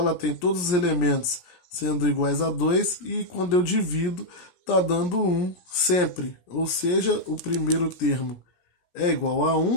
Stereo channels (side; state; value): right; late; 17 ms